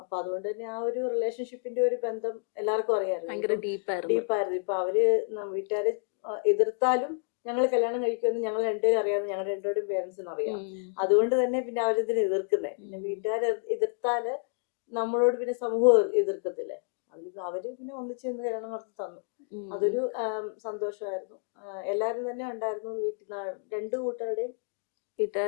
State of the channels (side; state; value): right; silent; digital silence